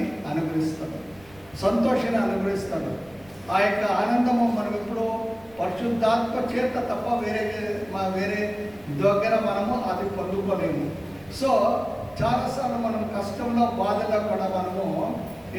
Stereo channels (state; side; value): noise; right; rumble, 26 dB below the sound